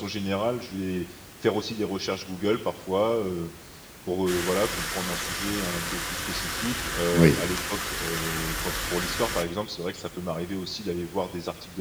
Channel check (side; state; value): both; identical; correlation 1.00